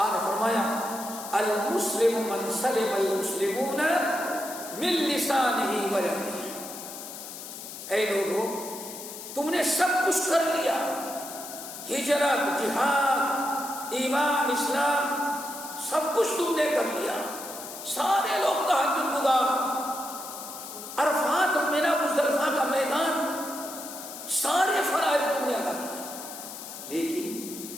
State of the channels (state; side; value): noise; left; hiss, 11 dB below the sound